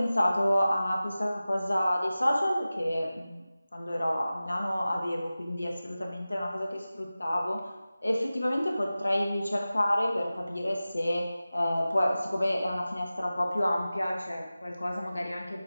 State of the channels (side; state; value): both; inverted; correlation -0.96